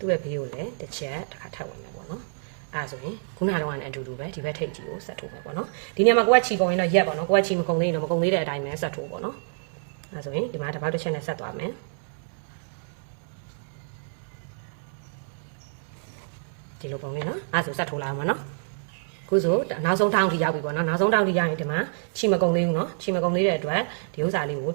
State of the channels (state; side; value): silent; left; digital silence